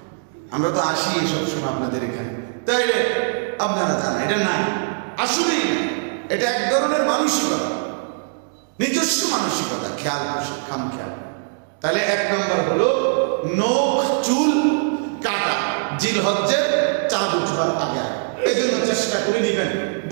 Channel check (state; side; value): silent; left; digital silence